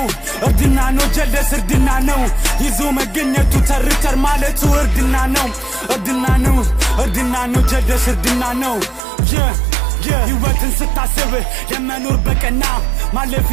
እርድና ነው ጀለስ እርድና ነው ይዞ መገኘቱ ተርተር ማለቱ እርድና ነው እርድና ነው እርድና ነው ጀለስ እርድና ነው ህይወትን ስታስብ የመኖር በቀና ማለፍ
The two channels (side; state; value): left; drops out; at 9.0 s